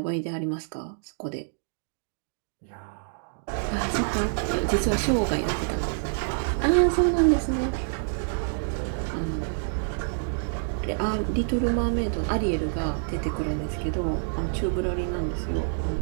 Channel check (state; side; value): silent; left; digital silence